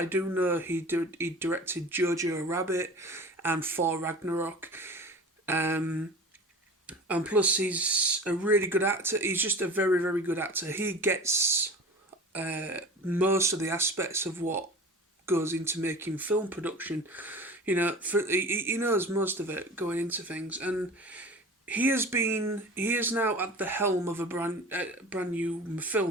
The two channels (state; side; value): normal; both; correlation 0.37